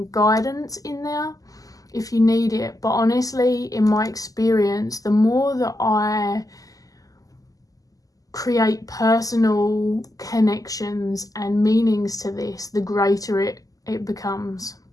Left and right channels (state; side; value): late; right; 0.17 ms